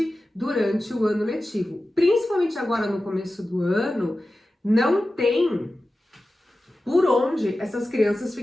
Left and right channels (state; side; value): normal; both; correlation 0.94